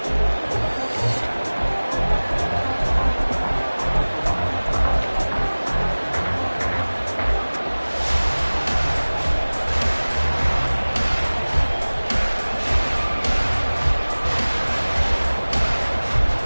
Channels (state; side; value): inverted; both; correlation -1.00